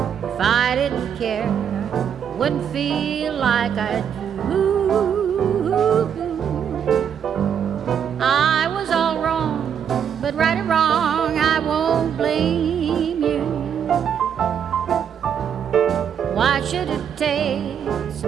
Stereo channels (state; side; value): quieter; left; 8.2 dB